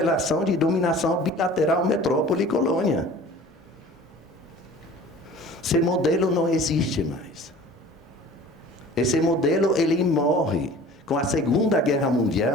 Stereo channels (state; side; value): normal; both; correlation 0.45